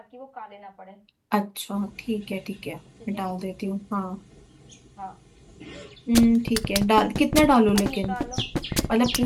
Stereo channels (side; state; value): both; identical; correlation 1.00